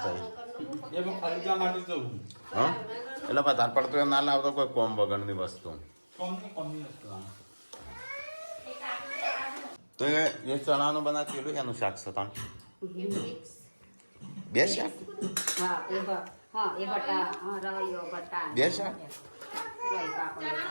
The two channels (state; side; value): inverted; both; correlation -1.00